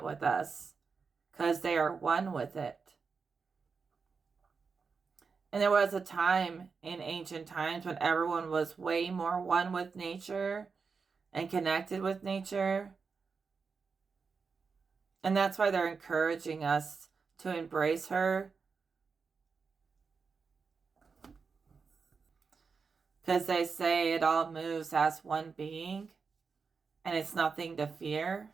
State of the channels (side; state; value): left; quieter; 5.2 dB